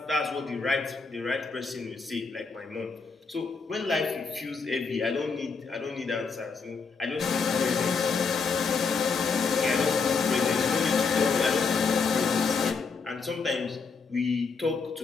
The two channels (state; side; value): quieter; right; 4.9 dB